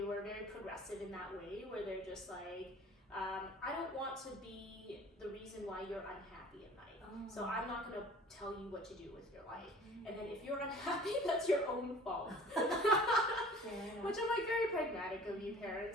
were very progressive in that way, where they're just like, I don't want to be the reason why you're unhappy at night. So I'm not going to tell you what to do with your life. And then if you're unhappy, that's your own fault. Which I'm like, very pragmatic of you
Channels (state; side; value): normal; both; correlation 0.47